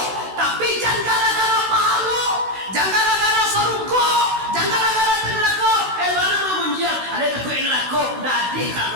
tapi jangan gara-gara pahalo, jangan gara-gara surga, jangan gara-gara neraka. Mana mau menjial? Ada takut neraka, dadi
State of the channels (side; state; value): left; late; 16 ms